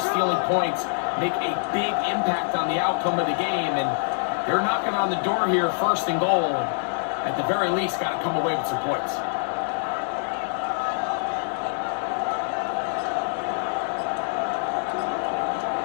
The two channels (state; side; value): silent; right; digital silence